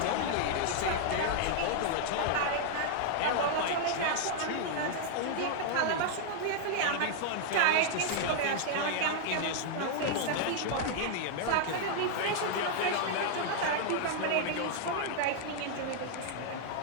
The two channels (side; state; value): both; different; correlation 0.00